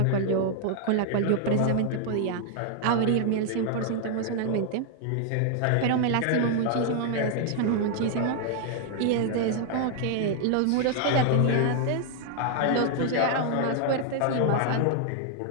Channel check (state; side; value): different; both; correlation 0.00